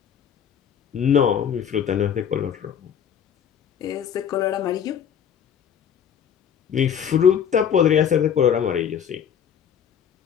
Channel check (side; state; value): right; quieter; 8.4 dB